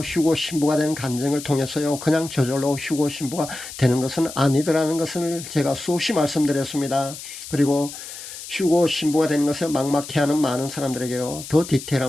휴거 신부가 되는 간증을 통해서요. 그냥 저절로 휴거 신부가 되는 것은 아니더라는 것을 제가 수없이 말씀드렸습니다. 그리고 휴거 신부가 되는 것을 막막해하는 많은 사람들에게요. 더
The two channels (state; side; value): noise; left; hiss, 12 dB below the sound